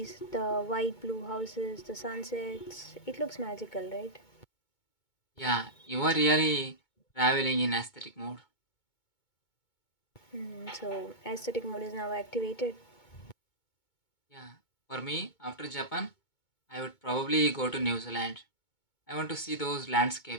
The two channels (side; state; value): right; late; 2.2 ms